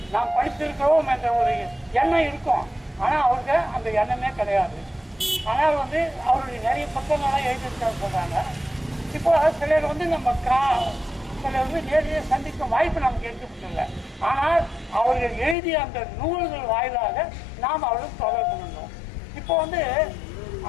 நாம் படித்திருக்கிறோம் என்ற ஒரு எண்ணம் இருக்கும். ஆனால் அவருக்கு அந்த எண்ணமே கிடையாது. ஆனால் அவருடைய நிறைய புத்தகங்கள்லாம் எழுதியிருக்காரு சொல்கிறாங்க. இப்போ சிலர் நம்ம சிலர் நேரடியாக சந்திக்கும் வாய்ப்பு நமக்கு எடுத்துக்கிட்டு. ஆனால் அவர்கள் எழுதிய அந்த நூல்கள் வாயிலாக நாம் அவர்களுக்கு தொடர்பு கொண்டோம். இப்போ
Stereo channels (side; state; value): right; drops out; at 15.6 s